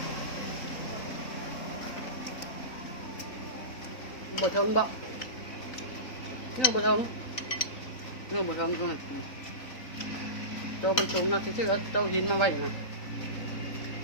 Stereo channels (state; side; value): late; right; 3.9 ms